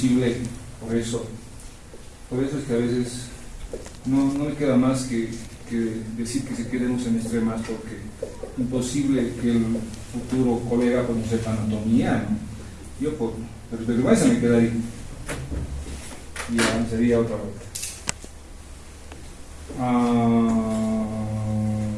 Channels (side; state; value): both; identical; correlation 1.00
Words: por eso es que a veces no me queda más que decir que se quede un semestre más, porque imposible que el futuro colega pues no sepa anatomía, ¿no? Yo por vergüenza me quedaría y ya sería otra vuelta.